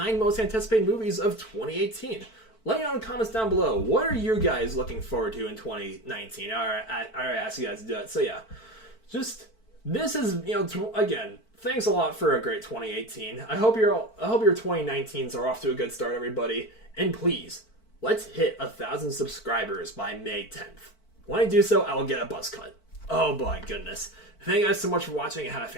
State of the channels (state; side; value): late; right; 4.5 ms